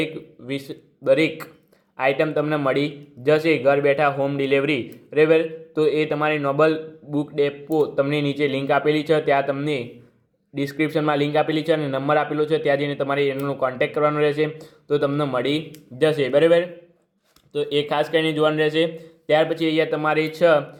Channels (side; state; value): both; identical; correlation 1.00